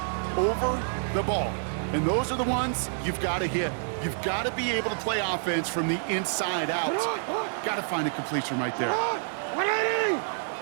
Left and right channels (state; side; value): silent; left; digital silence